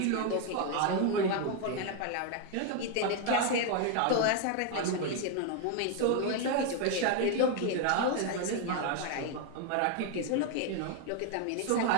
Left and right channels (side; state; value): both; different; correlation 0.01